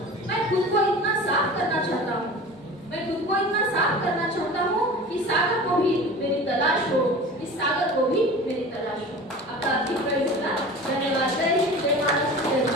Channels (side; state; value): both; normal; correlation 0.37